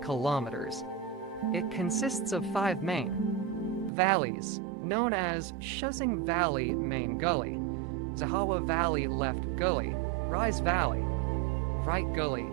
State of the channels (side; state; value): left; drops out; at 3.9 s